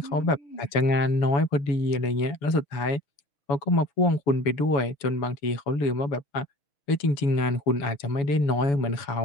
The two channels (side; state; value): right; late; 7.0 ms